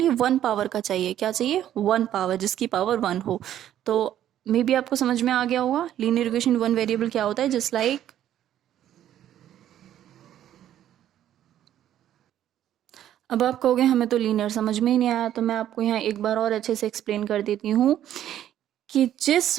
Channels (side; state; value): left; quieter; 11.4 dB